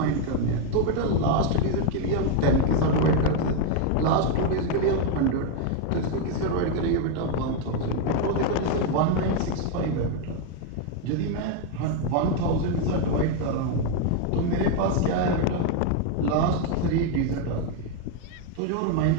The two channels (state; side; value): different; both; correlation 0.01